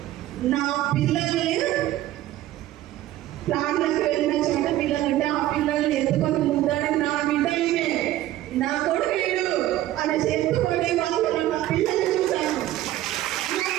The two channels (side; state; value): left; quieter; 14.4 dB